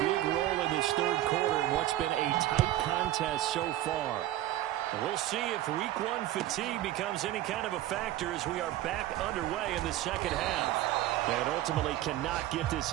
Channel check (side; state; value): left; quieter; 14.4 dB